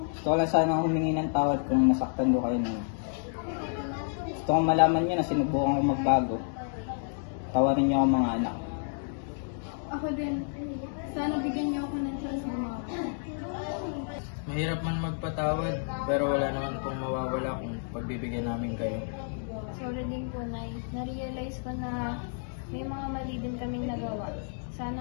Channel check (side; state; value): right; silent; digital silence